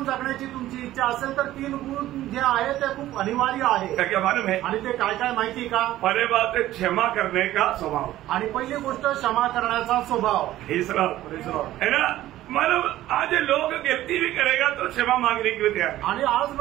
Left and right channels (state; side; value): quieter; left; 14.5 dB